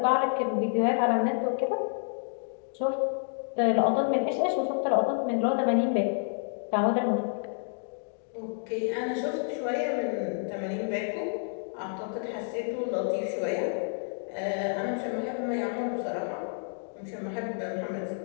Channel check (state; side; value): silent; right; digital silence